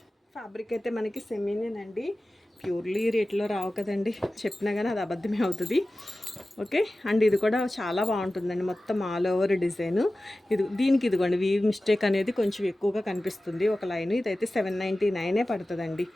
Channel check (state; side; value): normal; both; correlation 0.96